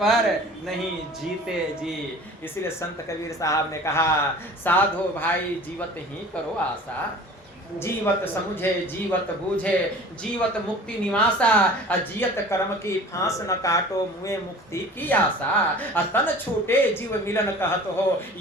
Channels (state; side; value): normal; both; correlation 0.43